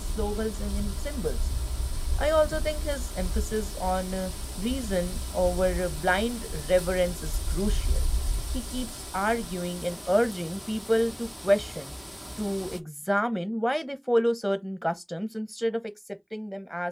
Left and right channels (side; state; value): both; identical; correlation 1.00